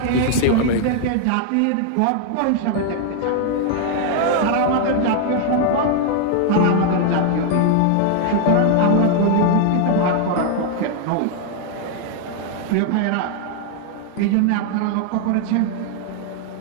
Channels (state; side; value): different; both; correlation 0.00